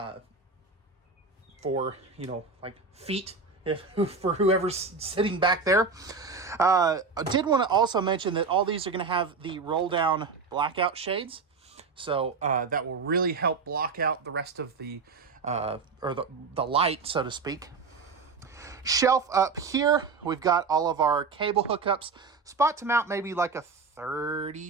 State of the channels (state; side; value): quieter; left; 4.6 dB